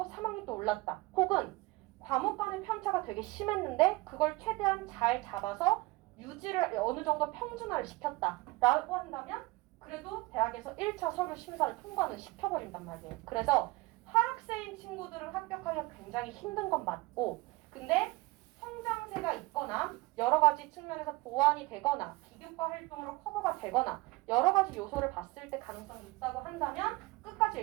3학년 때 올랐다. 혹은 과목 간의 편차가 되게 심했는데 그걸 최대한 잘 잡아서 유지를 어느 정도 평준화를 시켰다라고 한다면 그래도 대학에서 1차 서류 심사를 통과는 시켜버린단 말이에요. 그래서 하락세인 친구들은 합격하기가 굉장히 힘든 건 맞고 근데 성장세가 있거나 여러 가지 측면에서 보완이 되거나 비교과 활동으로 커버가 되거나 여러 가지 요소를 봤을 때 가능성이 있다고 한다면 끝까지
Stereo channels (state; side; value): quieter; left; 21.9 dB